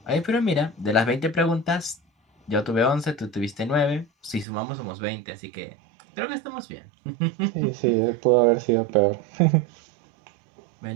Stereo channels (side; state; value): left; drops out; at 4.5 s